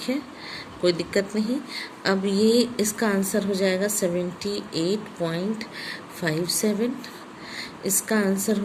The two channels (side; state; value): both; identical; correlation 1.00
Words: है, कोई दिक्कत नहीं। अब ये इसका आंसर हो जाएगा 78.57, इसका आंसर